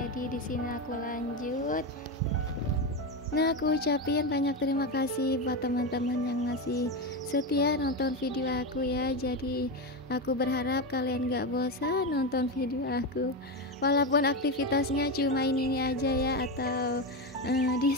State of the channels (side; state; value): both; normal; correlation 0.14